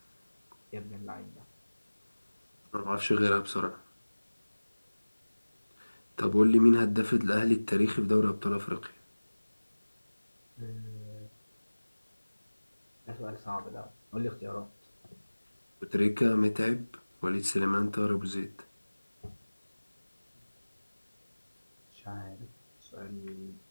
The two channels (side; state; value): both; inverted; correlation -1.00